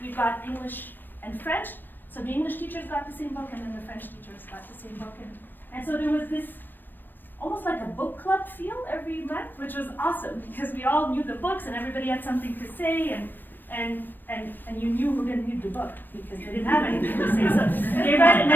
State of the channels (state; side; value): late; right; 0.093 ms